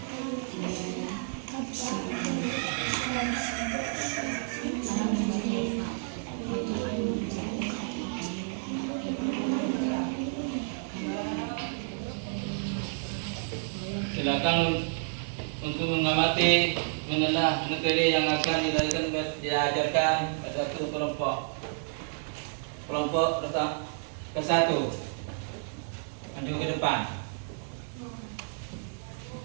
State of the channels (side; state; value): left; silent; digital silence